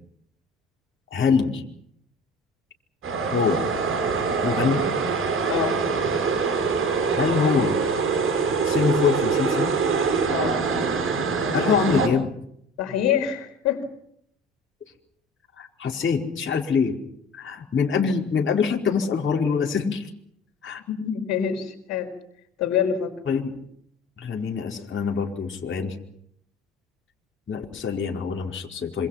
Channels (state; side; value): normal; both; correlation 0.40